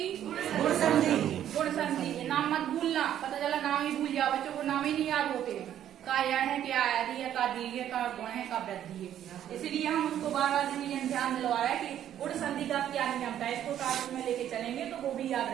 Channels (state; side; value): quieter; left; 10.8 dB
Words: गुण संधि। गुण संधि, नाम मत भूलना, पता चला नाम ही भूल जाओ, बच्चों को नाम ही नहीं याद होते हैं, का यह है, क्या आदि है, का दीर्घ है, का गुण है, का वृद्धि है। इसलिए हम उसको बार बार रिवीजन ध्यान दिलवा रहे हैं कि गुण संधि का क्या नियम था, इसको कार्य में लेके चलेंगे तो वो भी याद